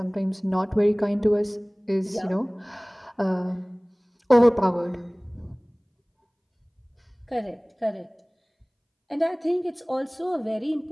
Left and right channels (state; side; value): identical; both; correlation 1.00